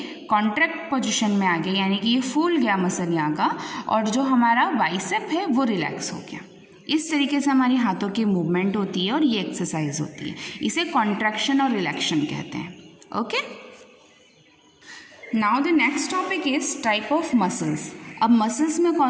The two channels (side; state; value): both; identical; correlation 1.00